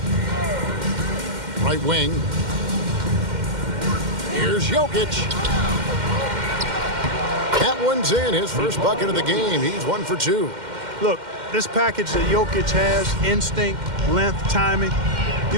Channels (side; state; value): left; late; 2.1 ms